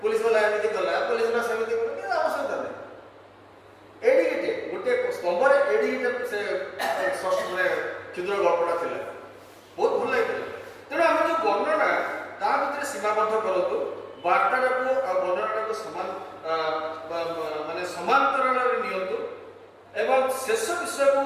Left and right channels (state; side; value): identical; both; correlation 1.00